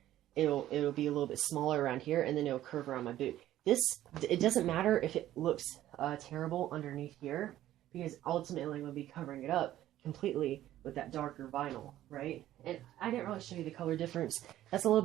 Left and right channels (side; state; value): left; quieter; 13.4 dB